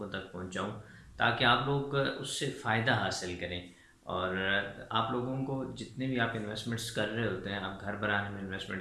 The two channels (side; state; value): both; identical; correlation 1.00